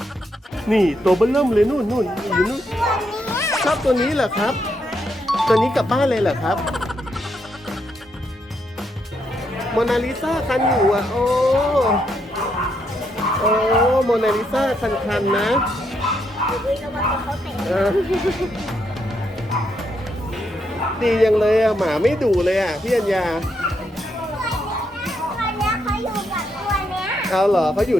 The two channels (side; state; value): both; normal; correlation 0.78